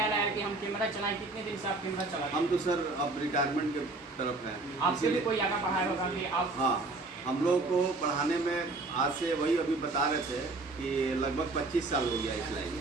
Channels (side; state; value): left; quieter; 3.3 dB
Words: आया कि हम कैमरा चलाएं? कितने दिन से आप कैमरा चलाते हैं? हम तो सर अब रिटायरमेंट के तरफ हैं। आपसे भी कोई आगे पढ़ाया होगा कि आप? हाँ, हम लोग को पढ़ाने में आज से वही अभी बता रहे थे कि लगभग 25 साल हो गया इस लाइन